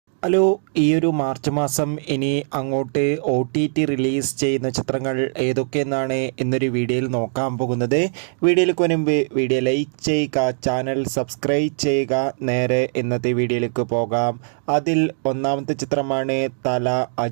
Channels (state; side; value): silent; left; digital silence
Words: Hello, ഈ ഒരു March മാസം ഇനി അങ്ങോട്ട് OTT റിലീസ് ചെയ്യുന്ന ചിത്രങ്ങൾ ഏതൊക്കെയെന്നാണ് എന്നൊരു വീഡിയോയിൽ നോക്കാൻ പോകുന്നത്. വീഡിയോയിലേക്ക് മുൻപ് വീഡിയോ ലൈക്ക് ചെയ്യുക, ചാനൽ സബ്സ്ക്രൈബ് ചെയ്യുക. നേരെ ഇന്നത്തെ വീഡിയോയിലേക്ക് പോകാം. അതിൽ ഒന്നാമത്തെ ചിത്രമാണ് തല.